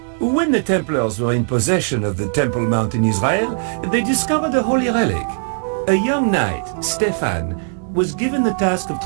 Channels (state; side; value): silent; left; digital silence